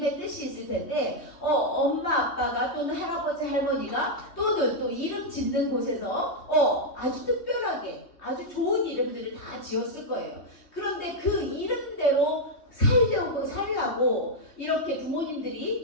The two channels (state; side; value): late; right; 3.2 ms